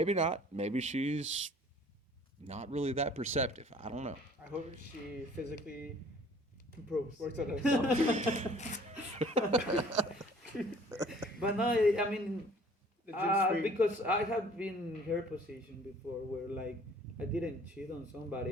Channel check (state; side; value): normal; both; correlation 0.53